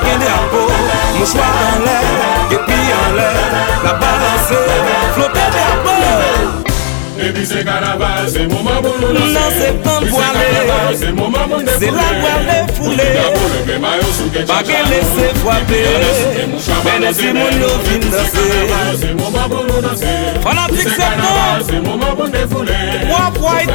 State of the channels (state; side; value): silent; right; digital silence